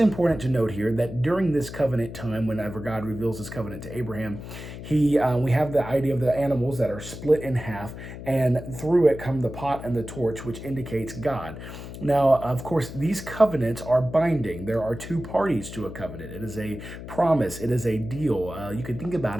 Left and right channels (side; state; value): left; noise; hum, 11 dB below the sound